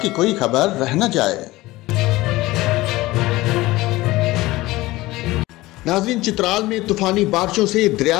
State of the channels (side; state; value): right; quieter; 18.9 dB